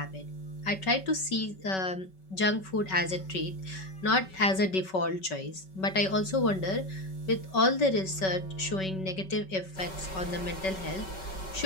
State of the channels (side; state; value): right; late; 5.3 ms